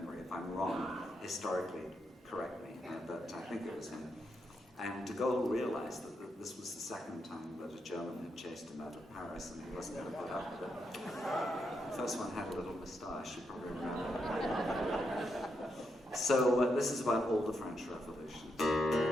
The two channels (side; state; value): both; normal; correlation 0.82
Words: If I'm wrong, historically, correct me. But I think it was him. And de Gaulle realized that this was the second time that a German had chased him out of Paris, and he wasn't going to put up with it. The first one had a little moustache, you probably remember. So this is about all the French revolutions.